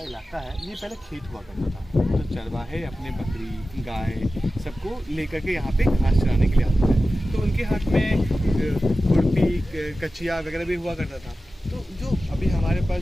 इलाका है ये पहले खेत हुआ करता था। तो चरवाहे अपने बकरी, गाय सबको लेकर के यहाँ पे घास चराने के लिए आते थे। तो उनके हाथ में खुरपी, कचिया वगैरह भी हुआ करता था। तो जो अभी हमारे पास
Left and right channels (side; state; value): both; normal; correlation 0.95